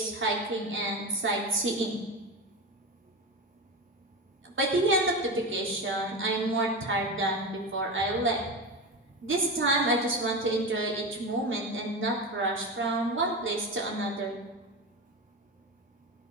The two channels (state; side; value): normal; both; correlation 0.22